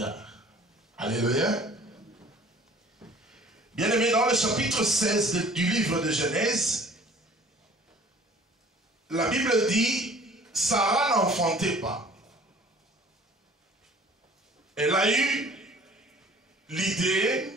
Alléluia. Bien-aimé, dans le chapitre 16 du livre de Genèse, la Bible dit, Sarah n'enfantait pas. Elle a eu l'idée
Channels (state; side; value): normal; both; correlation 0.50